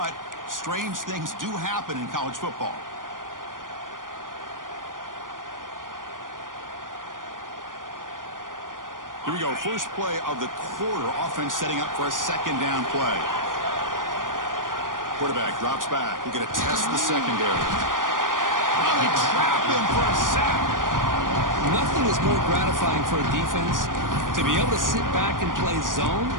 strange things do happen in college football. Here we go. First play of the quarter. Offense setting up for a second down play. Quarterback drops back. We're going to test the secondary. Oh, they trap him for a sack. Nothing is more gratifying for a defense to be able to sit back and play zone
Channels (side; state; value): left; late; 0.89 ms